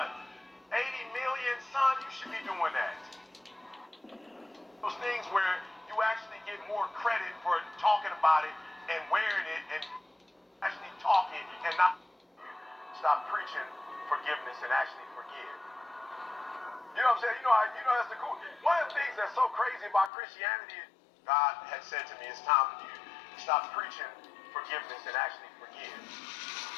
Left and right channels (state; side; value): drops out; right; at 20.1 s